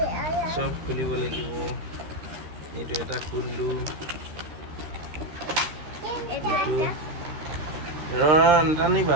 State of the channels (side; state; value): left; late; 13 ms